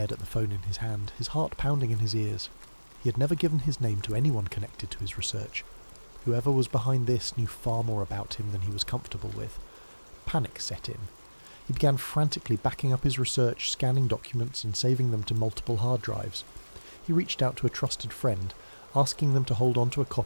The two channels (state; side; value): inverted; both; correlation -1.00